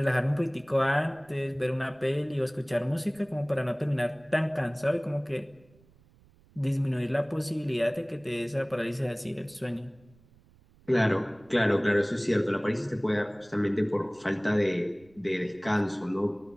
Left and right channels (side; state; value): right; noise; rumble, 28 dB below the sound